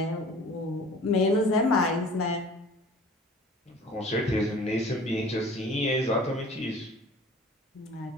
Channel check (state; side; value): normal; both; correlation 0.46